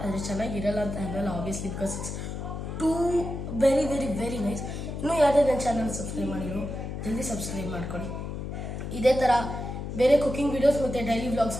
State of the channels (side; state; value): left; noise; hum, 6 dB below the sound